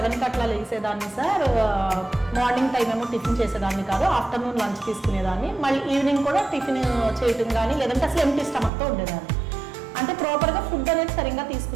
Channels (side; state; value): left; drops out; at 8.7 s